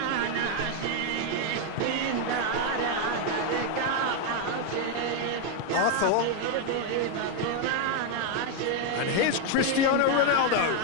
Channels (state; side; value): different; both; correlation 0.01